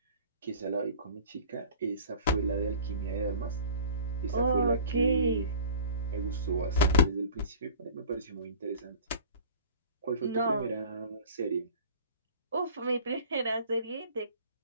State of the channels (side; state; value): both; inverted; correlation -0.44